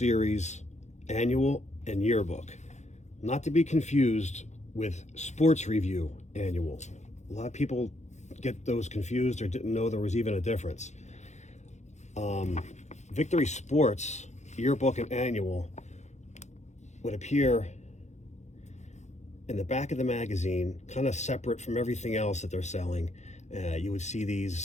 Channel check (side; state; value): right; late; 0.33 ms